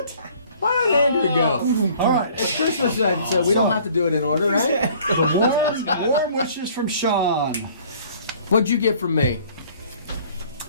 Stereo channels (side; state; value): both; inverted; correlation -0.54